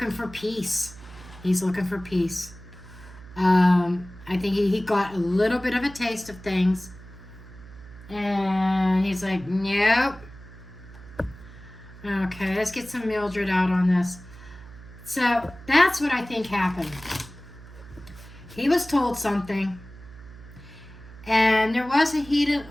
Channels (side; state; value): right; noise; hum, 18 dB below the sound